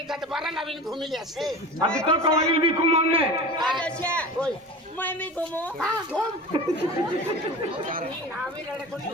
तो 12 लाविन घूमी लिया अभी तो कवाइल भी घुमाने अच्छा मैं भी घूमू हां घूम नावी रड़े को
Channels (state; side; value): normal; both; correlation 0.33